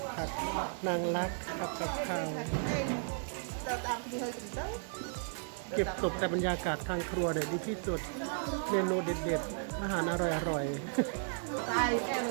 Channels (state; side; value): silent; left; digital silence